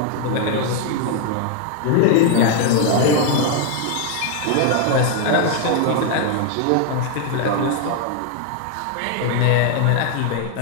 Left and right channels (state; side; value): different; both; correlation 0.00